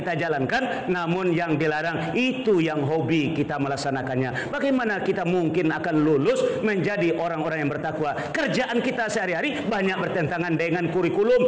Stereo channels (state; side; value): identical; both; correlation 1.00